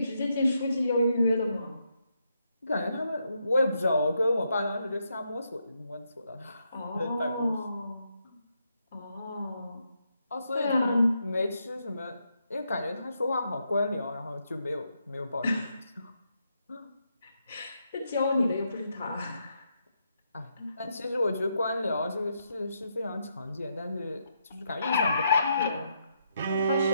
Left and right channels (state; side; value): inverted; both; correlation -0.80